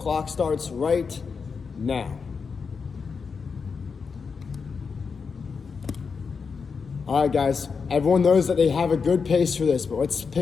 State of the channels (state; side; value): quieter; right; 5.4 dB